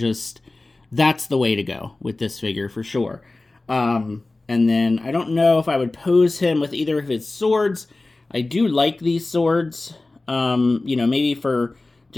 that's the way to go with this figure for sure. And then I don't know if I would pose him with either of his swords. I do like these swords. You know, maybe for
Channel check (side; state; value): right; quieter; 3.1 dB